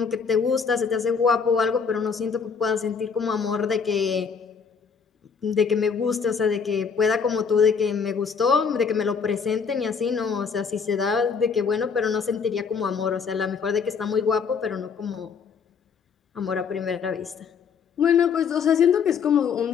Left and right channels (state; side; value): quieter; right; 6.0 dB